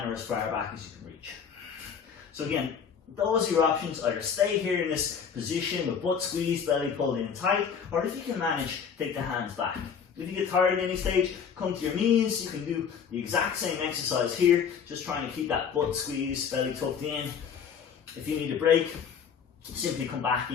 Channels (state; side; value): quieter; right; 7.0 dB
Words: or as far back as you can reach. So again, those are your options. Either stay here in this position with butt squeezed, belly pulled in tight, or if you can manage, take the hands back. If you get tired at any stage, come to your knees. You can do the exact same exercise here, just trying to keep that butt squeezed, belly tucked in. If you need a break, simply come back